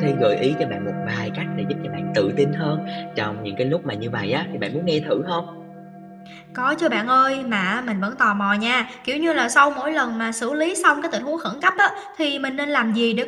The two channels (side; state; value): both; identical; correlation 1.00